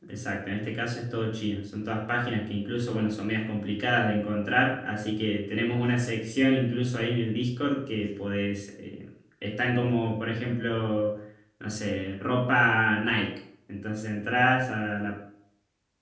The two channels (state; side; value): identical; both; correlation 1.00